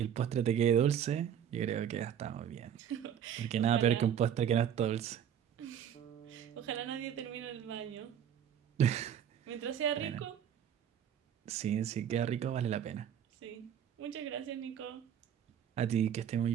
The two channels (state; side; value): quieter; left; 9.2 dB